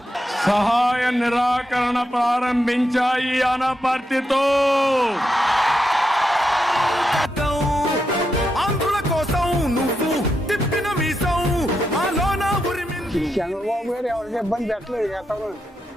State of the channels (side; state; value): both; normal; correlation 0.84